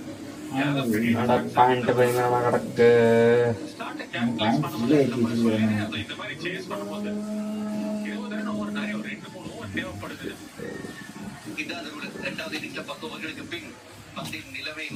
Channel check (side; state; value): both; identical; correlation 1.00